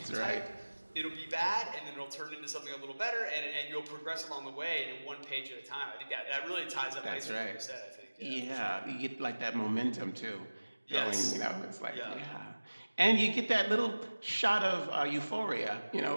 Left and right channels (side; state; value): both; inverted; correlation -1.00